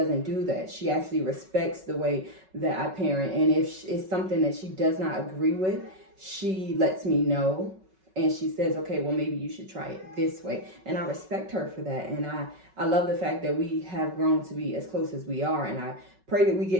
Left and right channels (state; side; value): late; left; 5.3 ms